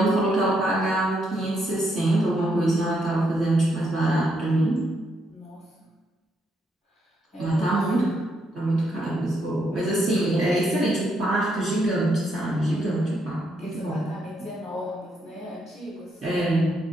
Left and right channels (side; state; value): both; normal; correlation 0.77